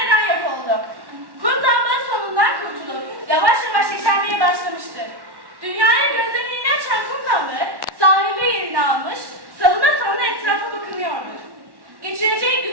yok oldu? Kum damla sonundan kurtulup yavaş yavaş yeşermeye başlamıştır. Dünyaya gözlerini açan kum damla sahilde yerini almış, salına salına etrafa bakınıyordu. Geçireceği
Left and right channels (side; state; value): left; late; 1.1 ms